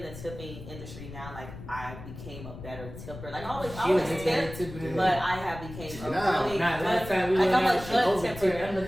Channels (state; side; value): noise; left; rumble, 13 dB below the sound